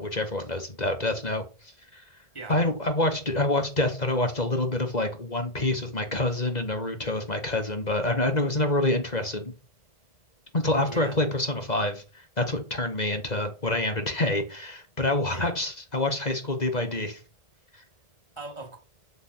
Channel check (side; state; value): right; late; 2.0 ms